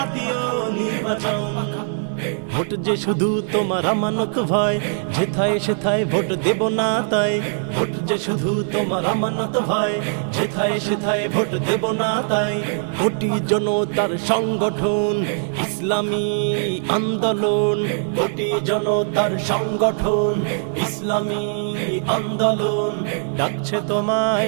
নির্বাচন। ভোট যে শুধু তোমার আমানত ভাই, যেথায় সেথায় ভোট দেব না তাই। ভোট যে শুধু তোমার আমানত ভাই, যেথায় সেথায় ভোট দেব না তাই। কোটি জনতার সংগঠন ইসলামী আন্দোলন, কোটি জনতার সংগঠন ইসলামী আন্দোলন, ডাকছে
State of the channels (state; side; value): silent; left; 59 dB below the other